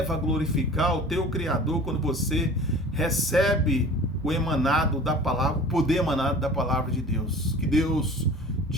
a glorificar o teu Criador quando você recebe o emanado da palavra, o poder emanado da palavra de Deus. Que Deus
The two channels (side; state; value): both; normal; correlation 0.42